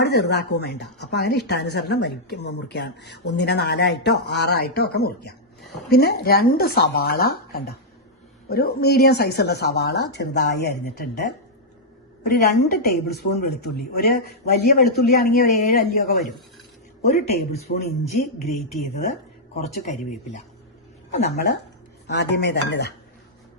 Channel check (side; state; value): both; normal; correlation -0.08